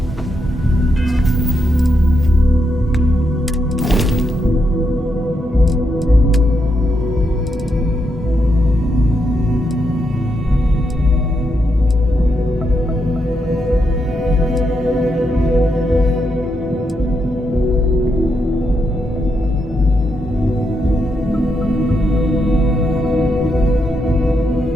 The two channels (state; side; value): normal; both; correlation 0.81